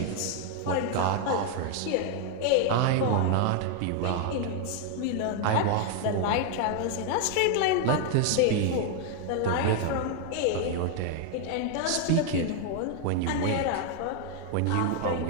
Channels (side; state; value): both; different; correlation 0.00